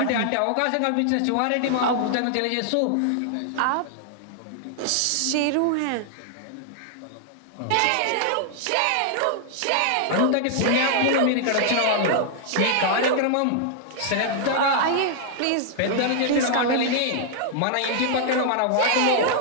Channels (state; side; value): different; both; correlation 0.00